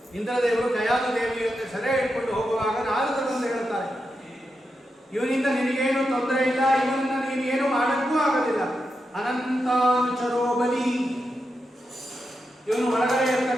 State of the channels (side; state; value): both; normal; correlation 0.87